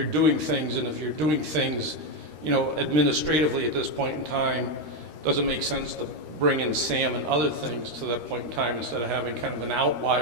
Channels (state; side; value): late; left; 13 ms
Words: doing things, and if you're doing things, administratively at this point in time, does it make sense to bring in SAM and other things to that point in time instead of having kind of an